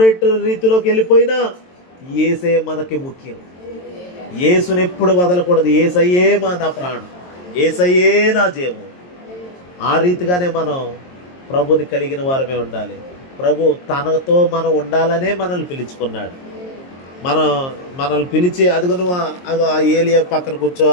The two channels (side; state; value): right; late; 22 ms